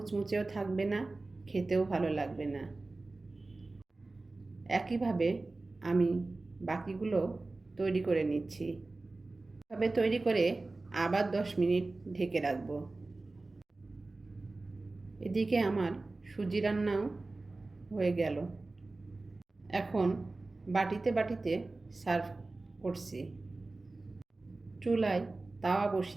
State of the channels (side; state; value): left; quieter; 3.3 dB